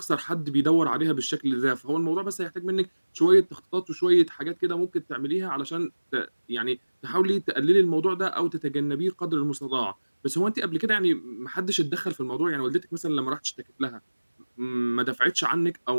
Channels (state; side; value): inverted; both; correlation -1.00